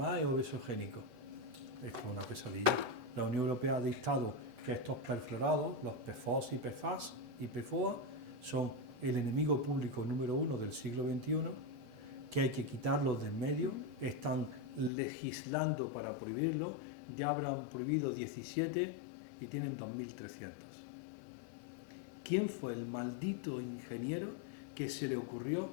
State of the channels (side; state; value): right; drops out; at 14.9 s